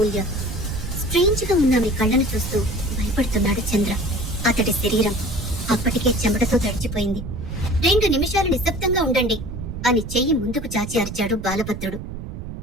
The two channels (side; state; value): right; noise; rumble, 8 dB below the sound